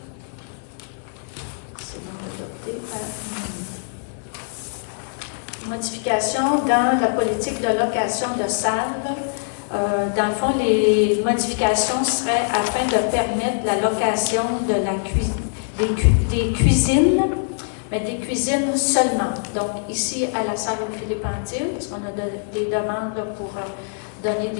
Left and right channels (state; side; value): silent; right; 64 dB below the other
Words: C'est donc adopté à l'unanimité. Modification dans la politique de location de salles. Dans le fond, les modifications seraient afin de permettre la location de des cuisines, mais des cuisines seulement. Donc, ici, à la salle Philippe Antil, parce qu'on a des demandes pour donner